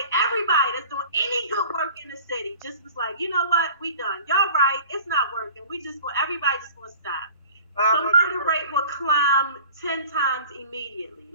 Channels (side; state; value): both; inverted; correlation -0.44